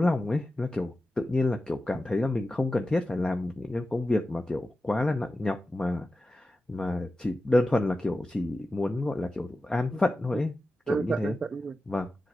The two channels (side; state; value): both; normal; correlation 0.93